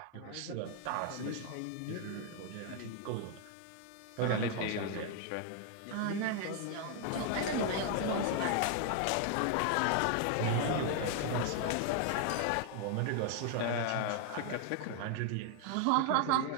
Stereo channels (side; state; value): both; different; correlation 0.00